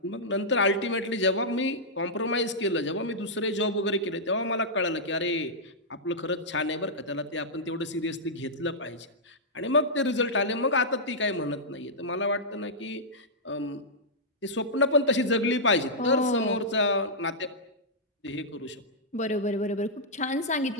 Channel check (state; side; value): normal; both; correlation -0.11